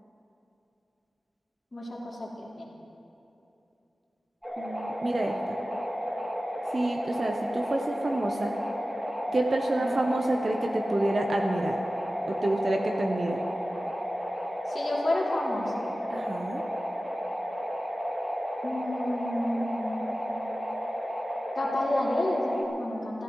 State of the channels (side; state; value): both; normal; correlation 0.95